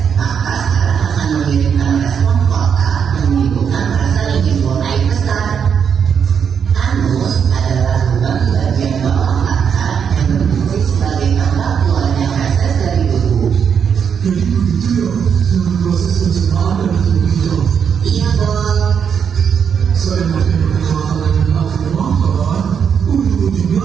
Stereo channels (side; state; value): left; quieter; 7.3 dB